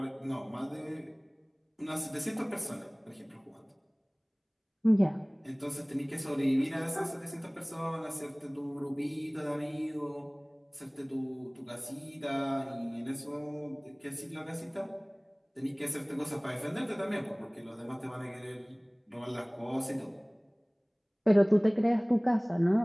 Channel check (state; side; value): identical; both; correlation 1.00